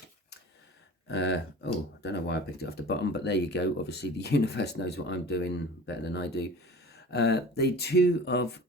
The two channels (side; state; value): both; normal; correlation 0.40